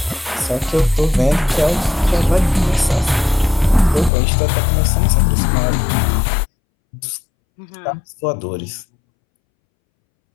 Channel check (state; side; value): drops out; right; at 4.1 s